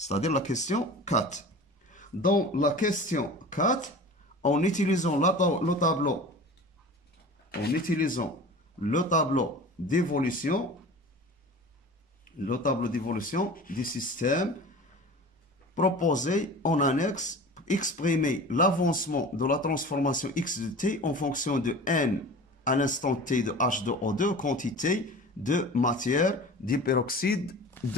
la question 4. Dans la question 4, en utilisant le tableau d'évolution du système proposé en annexe, exprimer l'avancement de la transformation X de T en fonction de N à l'instant T de H2O2, quantité de matière d'hyperoxyde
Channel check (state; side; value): normal; both; correlation 0.38